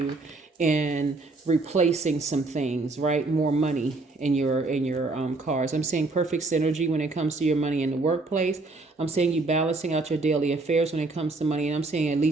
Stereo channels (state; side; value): quieter; left; 3.4 dB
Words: in replacing some things, right? More money in your cars. I'm seeing perfect synergy when it comes to your money in the workplace. I'm seeing you balancing out your daily affairs when it comes to money, and I'm seeing at